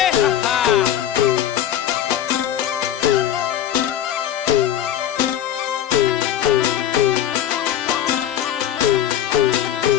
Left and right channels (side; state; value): right; quieter; 11.0 dB